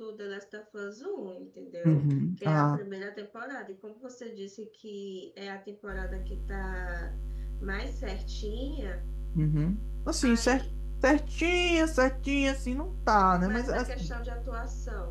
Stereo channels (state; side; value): identical; both; correlation 1.00